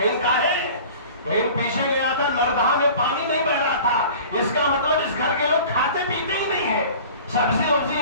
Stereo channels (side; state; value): both; inverted; correlation -0.42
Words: کہاں ہے؟ کہیں پیچھے گیا تھا، نردہا میں پانی نہیں بہ رہا تھا، اس کا مطلب اس گھر کے لوگ کھاتے پیتے ہی نہیں ہیں، سبزی وبزی